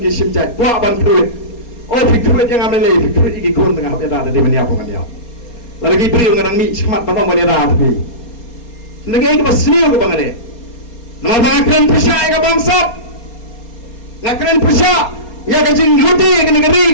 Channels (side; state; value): right; late; 4.3 ms